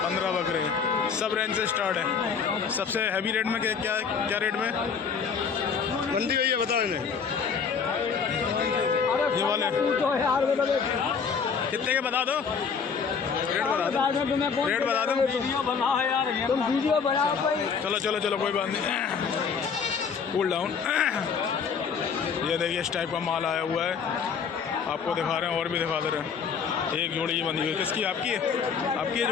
बकरे। सब रेंज से स्टार्ट है। सबसे हैवी रेट में क्या रेट में मंडी गई है बता दें? ये वाले कितने के बता दो? रेट बता दो। तुम वीडियो बनाओ भाई। चलो कोई बात नहीं, कूल डाउन। ये देखिए इस टाइप का माल आया हुआ है, आपको दिखा रहे हैं और भी दिखा दे रहे हैं। एक जोड़ी ये बंधी हुई, किसकी? आपकी है? आपकी है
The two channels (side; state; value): right; quieter; 6.1 dB